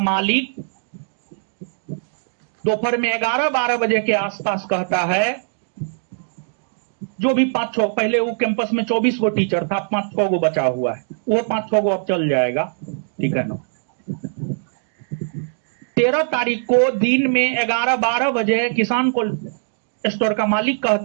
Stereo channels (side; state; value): left; silent; digital silence